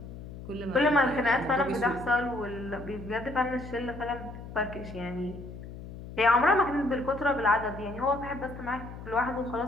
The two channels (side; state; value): left; noise; hum, 12 dB below the sound